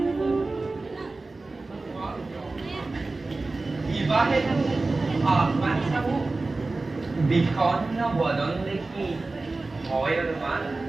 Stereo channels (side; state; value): left; quieter; 3.4 dB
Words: বিবাহে আহ্বান চাবো বিষণ্ণ বদন দেখি হয় অনুমান